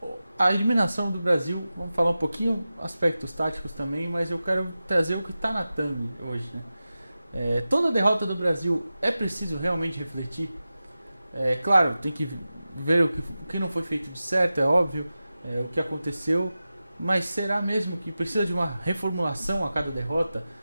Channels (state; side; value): inverted; both; correlation -0.94